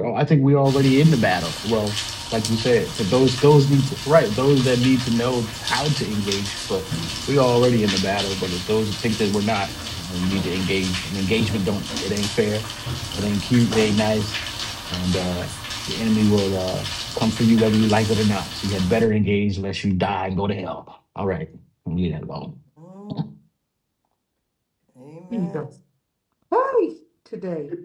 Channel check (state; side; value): identical; both; correlation 1.00